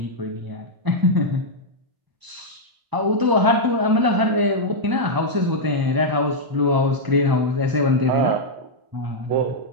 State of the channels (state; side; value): late; left; 1.0 ms